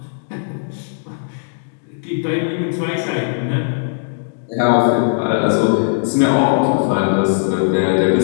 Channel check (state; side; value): silent; right; digital silence